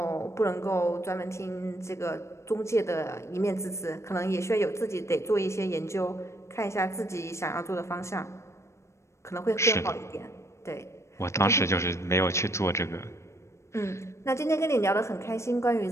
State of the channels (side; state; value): right; late; 0.13 ms